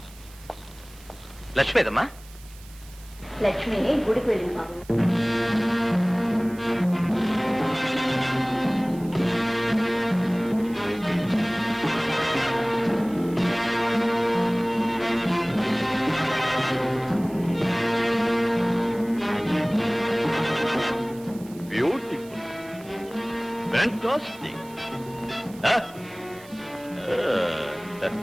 లక్ష్మీదమ్మా. లక్ష్మి గుడికి వెళ్ళింది బాబు. Beautiful, fantastic.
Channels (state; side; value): noise; right; hiss, 22 dB below the sound